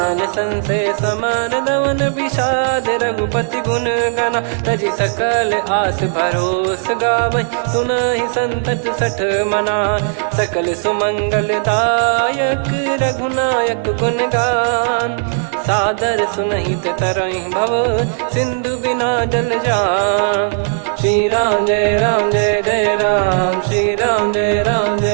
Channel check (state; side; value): silent; left; 69 dB below the other